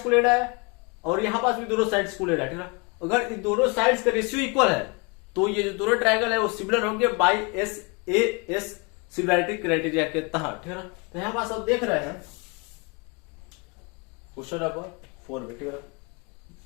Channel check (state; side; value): quieter; right; 30.5 dB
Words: को लेना है, और यहां पास भी दोनों साइड्स को लेना है, ठीक है। अगर इन दोनों साइड्स का रेशियो इक्वल है तो ये जो दोनों ट्रायंगल है वो सिमिलर होंगे बाई एस सिमिलैरिटी क्राइटेरिया के तहत, ठीक है ना। तो यहां पास आप देख रहे हैं क्वेश्चन नंबर 4 में, ठीक है,